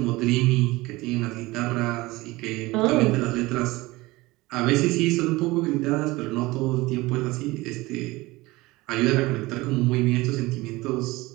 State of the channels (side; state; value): left; quieter; 20.6 dB